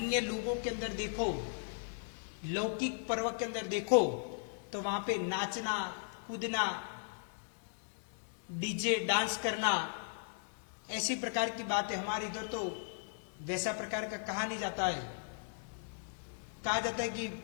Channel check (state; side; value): silent; right; digital silence